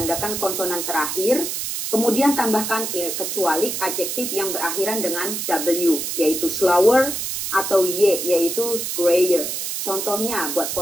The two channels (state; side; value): noise; right; hiss, 3 dB below the sound